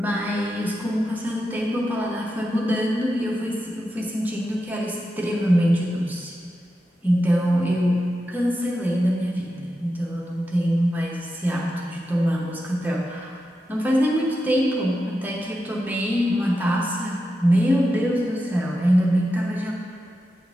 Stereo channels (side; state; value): both; normal; correlation 0.89